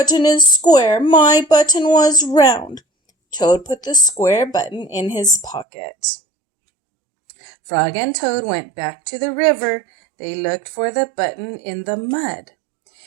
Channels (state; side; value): drops out; left; at 5.7 s